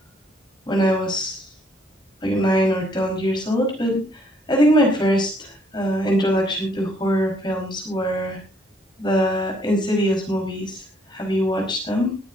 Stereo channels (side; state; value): both; normal; correlation 0.67